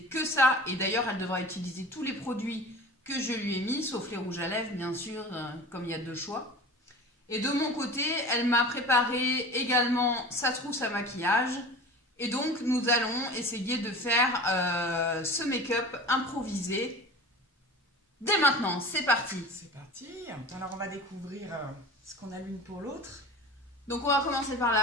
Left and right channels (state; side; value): normal; both; correlation 0.37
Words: que ça et d'ailleurs elle devra utiliser tous les produits que je lui ai mis, sauf les rouges à lèvres bien sûr, comme il y a deux choix. Et de mon côté, elle m'a préparé également sa trousse à maquillage. Et donc, nous allons essayer de faire ce make-up improvisé. Dès maintenant, c'est parti. C'est parti. Alors, on va découvrir ce qu'on a l'une pour l'autre. Donc, on va commencer par